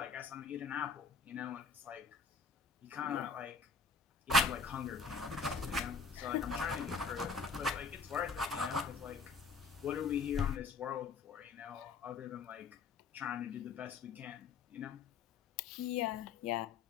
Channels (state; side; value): quieter; right; 4.7 dB